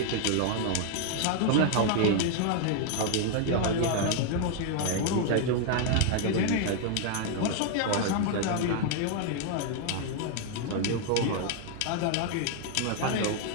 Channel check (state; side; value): different; both; correlation 0.00